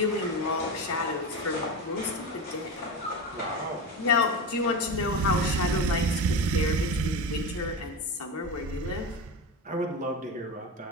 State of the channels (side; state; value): both; normal; correlation 0.22